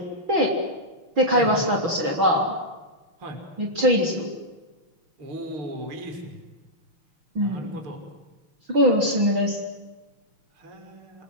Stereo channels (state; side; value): late; left; 6.1 ms